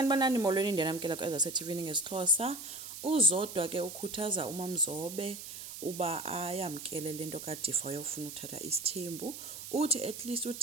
molweni ndiyanamkela kwezaseTV ngesiXhosa. Uzodwa ke ukhuthaza uMamzobe uba ayamkele lento kaDifa uyofuna uthatha isithembu. Uthi at least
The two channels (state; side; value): noise; right; hiss, 10 dB below the sound